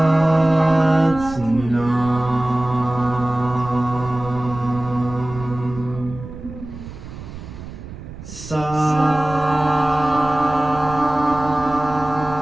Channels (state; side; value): noise; right; rumble, 13 dB below the sound